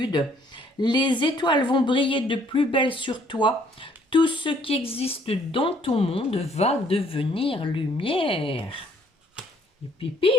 Les étoiles vont briller de plus belle sur toi. Tout ce qui existe dans ton monde va devenir lumière. Et pip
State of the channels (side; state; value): both; normal; correlation 0.63